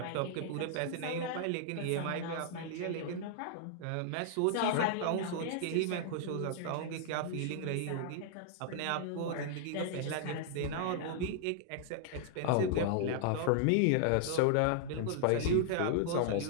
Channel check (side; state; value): both; different; correlation -0.01